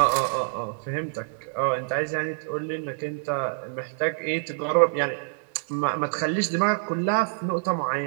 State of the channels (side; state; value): left; silent; 60 dB below the other